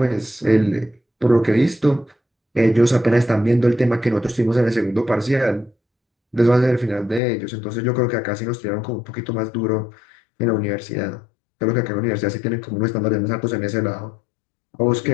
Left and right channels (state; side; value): drops out; right; at 7.2 s